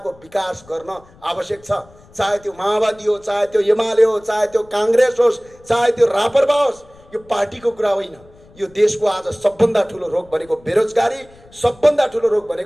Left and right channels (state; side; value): noise; left; rumble, 26 dB below the sound